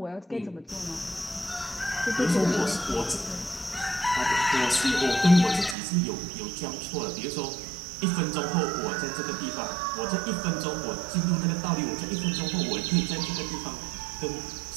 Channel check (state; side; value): drops out; left; at 5.8 s